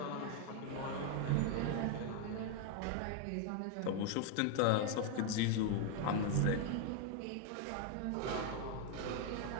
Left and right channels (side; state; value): both; different; correlation 0.01